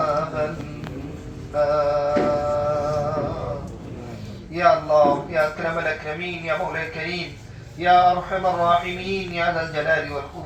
النار يا الله يا أكرم الأكرمين يا مولى الكريم يا أرحم الراحمين يا ذا الجلال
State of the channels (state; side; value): identical; both; correlation 1.00